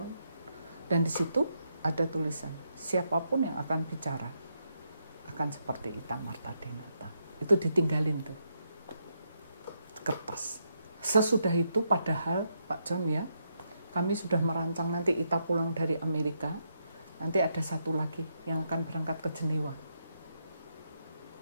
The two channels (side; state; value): both; inverted; correlation -0.80